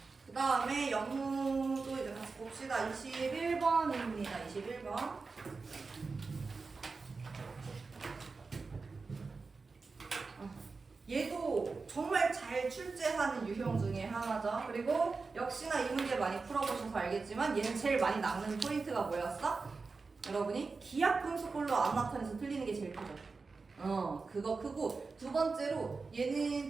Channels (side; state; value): left; quieter; 4.3 dB